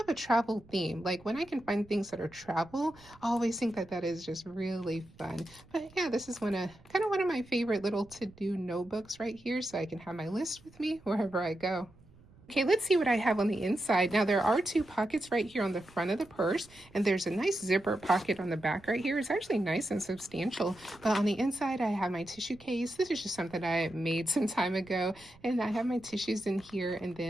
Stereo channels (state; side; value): noise; right; rumble, 25 dB below the sound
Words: a travel theme. Like when I can find things that are travel, I always think that that is just really fun. But yeah, this is kind of one of my favorite little to-do notebooks right here, so I can have my list with me wherever I go. Okay, let's see what I have on the inside. Now there are two pockets right here on the front of the purse, and there's a nice zipper pocket on the back right here. It's actually nice and substantial, but on the inside I have my tissue case. This is just something I made some time ago, and I have my tissues in here, and